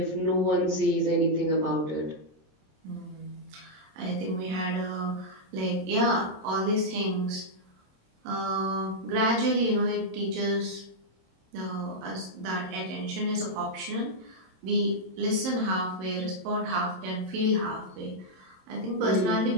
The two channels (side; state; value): left; late; 27 ms